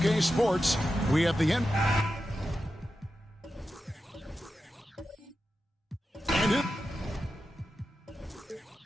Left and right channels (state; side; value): normal; both; correlation 0.91